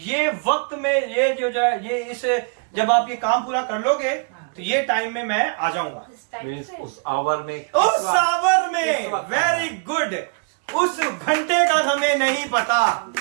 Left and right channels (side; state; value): left; quieter; 39.8 dB